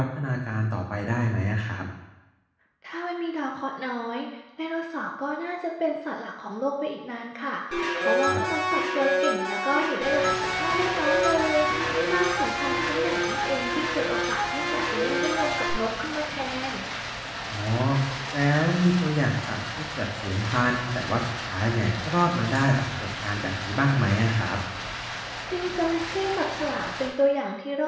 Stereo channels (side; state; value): both; identical; correlation 1.00